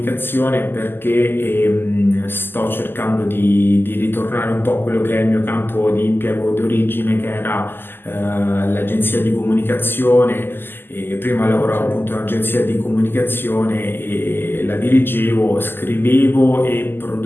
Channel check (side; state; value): right; late; 0.099 ms